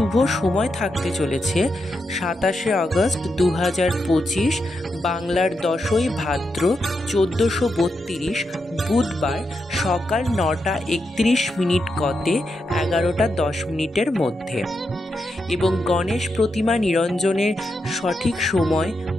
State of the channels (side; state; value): both; normal; correlation 0.85